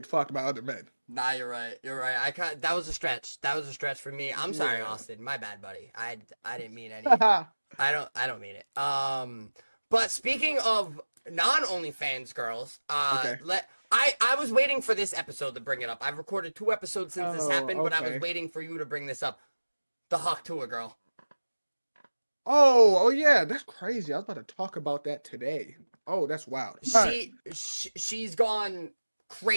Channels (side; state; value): both; inverted; correlation -1.00